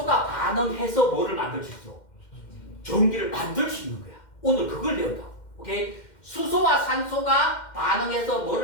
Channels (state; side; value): late; right; 2.1 ms